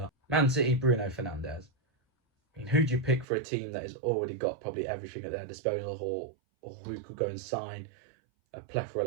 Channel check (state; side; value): drops out; left; at 3.2 s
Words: Man City, Bruno Fernandes. Who do you pick for a team that has already got probably everything at their disposal, or who could go and sign a plethora